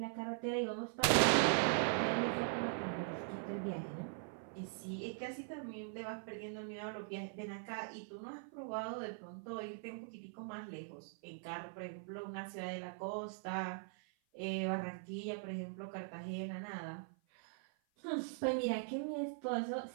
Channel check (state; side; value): silent; left; 50 dB below the other